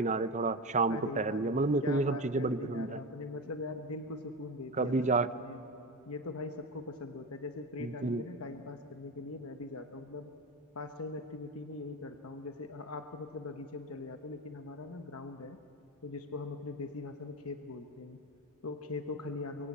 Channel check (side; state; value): both; normal; correlation 0.22